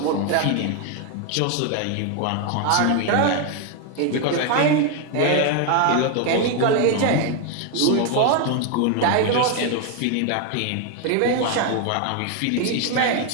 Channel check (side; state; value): both; different; correlation 0.01